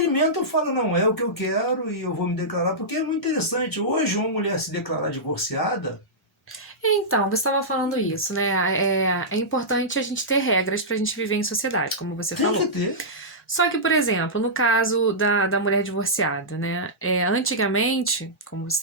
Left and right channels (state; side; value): normal; both; correlation -0.13